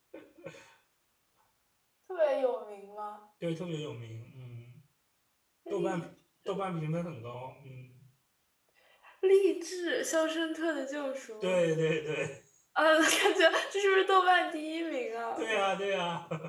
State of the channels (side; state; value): both; identical; correlation 1.00